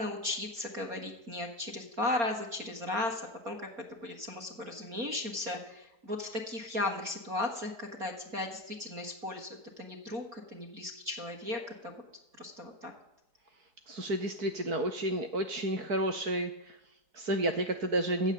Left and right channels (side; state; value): left; late; 4.3 ms